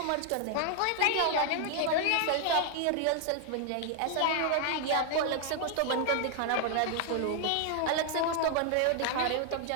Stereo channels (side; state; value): both; different; correlation 0.00